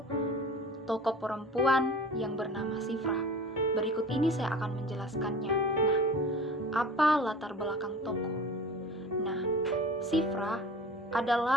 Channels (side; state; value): both; normal; correlation 0.39